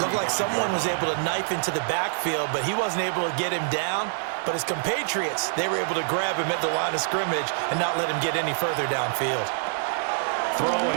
like someone was able to knife into the backfield, but he wasn't able to get him down. But his compatriots, they were able to grab him at the line of scrimmage and not let him get any further downfield.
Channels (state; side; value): silent; left; digital silence